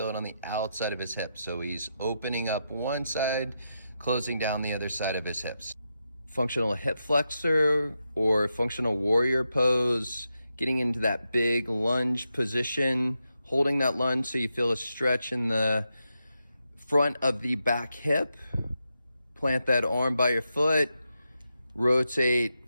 it on the outside of his hip. So he's opening up one side, closing down the other side of his hips. Functional hip flexor or functional warrior pose, getting into that big lunge position, holding that lunge so you feel a stretch in the front of the back hip. Plant that arm by your foot, rotate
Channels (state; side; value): inverted; both; correlation -0.86